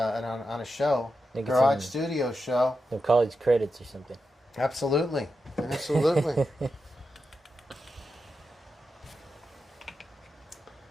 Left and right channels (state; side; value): normal; both; correlation 0.88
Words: show, garage studio show, some college credits or something. Absolutely. Absolutely.